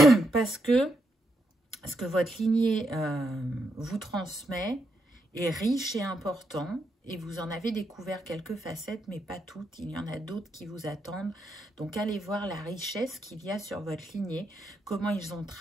Parce que ce que votre lignée vous transmet est riche et important, et vous en avez découvert quelques facettes, mais pas toutes. Il y en a d'autres qui vous attendent. Donc, allez voir la richesse qu'il y a sur votre lignée, comment ils ont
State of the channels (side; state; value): both; normal; correlation 0.81